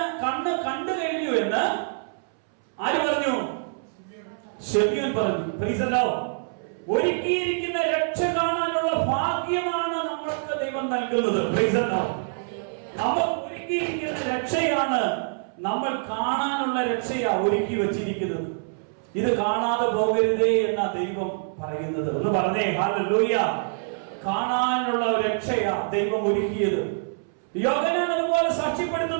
കഴിഞ്ഞു എന്ന് ആര് പറഞ്ഞു? ശെമീയോൻ പറഞ്ഞു. Price the Lord. ഒരുക്കിയിരിക്കുന്ന രക്ഷ കാണാനുള്ള ഭാഗ്യമാണ് നമ്മൾക്ക് ദൈവം നൽകുന്നത്. Price the Lord. നമുക്ക് ഒരുക്കിയിരിക്കുന്ന രക്ഷയാണ്, നമ്മൾ കാണാനുള്ള രക്ഷയാ ഒരുക്കി വെച്ചിരിക്കുന്നത്. ഇത് കാണാതെ പോകരുതേ എന്ന ദൈവം പറയുന്നത്. ഒന്ന് പറഞ്ഞേ ഹല്ലേലൂയ. കാണാനുള്ള രക്ഷയാ ദൈവം ഒരുക്കിയത്. യോഹന്നാൻ അതുപോലെ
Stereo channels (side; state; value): left; silent; 61 dB below the other